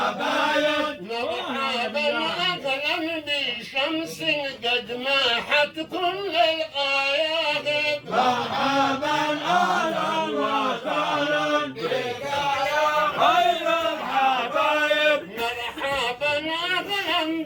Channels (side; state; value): both; identical; correlation 1.00